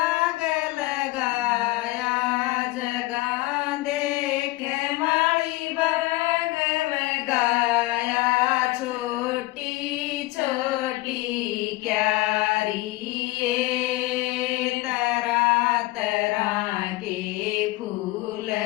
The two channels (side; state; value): right; quieter; 20.0 dB